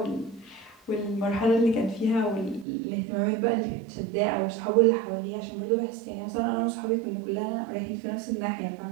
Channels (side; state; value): left; drops out; at 2.7 s